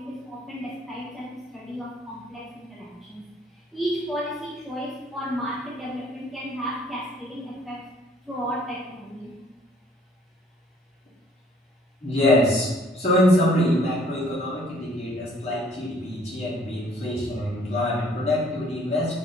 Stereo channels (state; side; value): normal; both; correlation 0.60